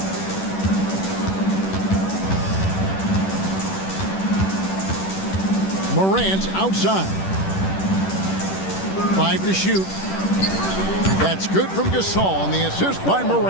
Morant outside. 5 to shoot. That's good from Gasol, and the assist by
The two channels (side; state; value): right; late; 10 ms